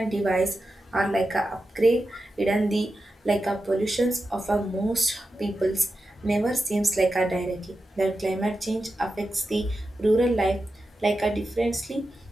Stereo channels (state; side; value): normal; both; correlation 0.90